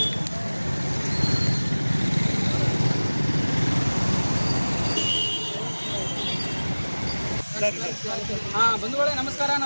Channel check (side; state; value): both; inverted; correlation -1.00